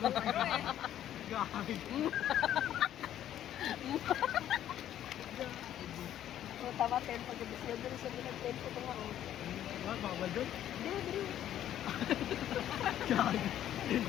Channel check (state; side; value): quieter; right; 11.4 dB